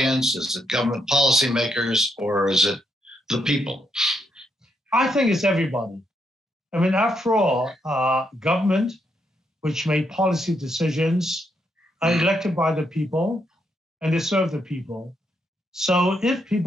Is it government policymakers, or is it the people? I think it's everybody. I mean, after all, government, which made policy decisions, are elected by the people, and they serve the people. So if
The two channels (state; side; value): normal; both; correlation 0.78